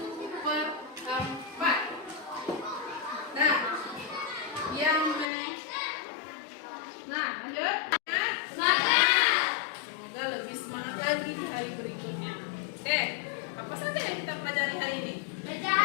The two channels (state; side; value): drops out; right; at 5.3 s